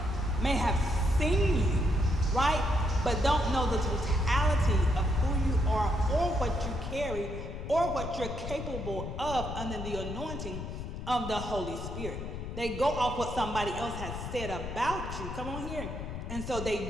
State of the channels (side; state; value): left; noise; rumble, 7 dB below the sound